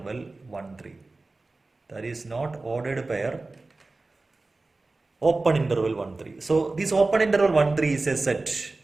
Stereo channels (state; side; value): quieter; left; 3.3 dB